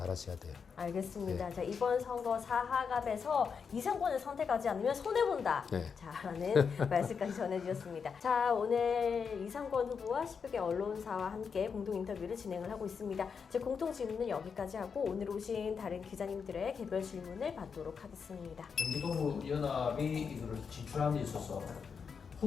돼요. 알겠습니다. 네. 자, 이번 선거 사하갑에서 이성권을 선택하지 않으면 손해본다. 네. 자, 라는 말씀까지 전해주셨습니다. 자, 오늘 이성권 후보와 10여 개 언론사와 함께 공동 인터뷰를 진행을 하고 있습니다. 제 공통 질문은 여기까지 하고 오늘 오신 다른 기자님들의 개별 질문을 받도록 하겠습니다. 경기도 연합이 이거를 진출하는 데 있어서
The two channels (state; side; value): quieter; right; 6.1 dB